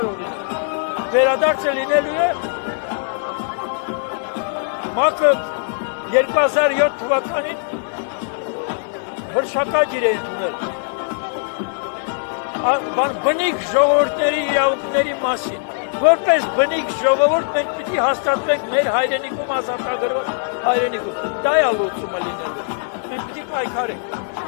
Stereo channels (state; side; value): silent; right; digital silence